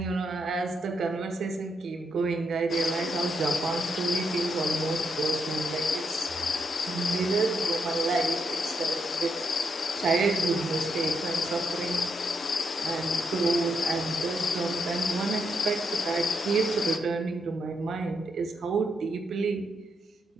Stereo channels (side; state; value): both; normal; correlation 0.79